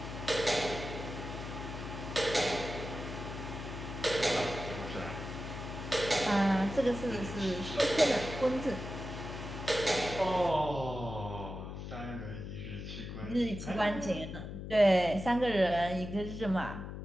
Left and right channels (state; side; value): noise; left; hum, 8 dB below the sound